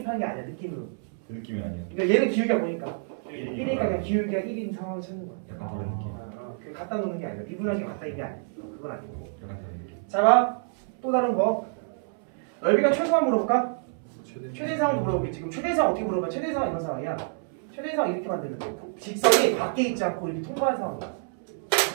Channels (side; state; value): left; silent; 60 dB below the other